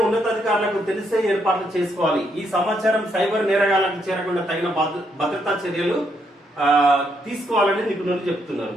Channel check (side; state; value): both; normal; correlation 0.75